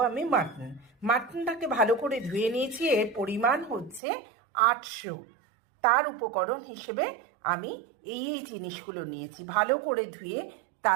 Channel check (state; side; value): drops out; left; at 4.0 s